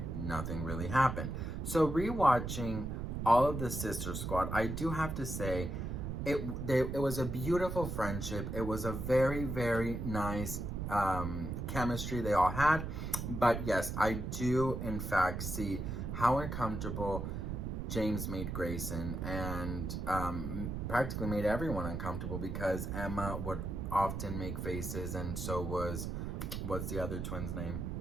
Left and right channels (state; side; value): noise; right; rumble, 4 dB below the sound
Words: nothing really happened. So rewatching all of the Sister Squad, I do have to say, it was a beautiful friendship. It was a very, very nice chemistry they all had. But yes, I do in fact see how uncomfortable James made Grayson, and practically made everyone uncomfortable, because Emma would often make faces, and so what's the other twin's name?